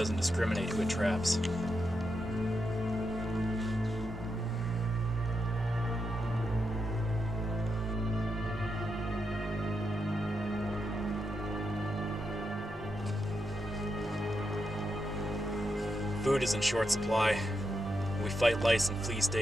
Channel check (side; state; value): both; normal; correlation 0.85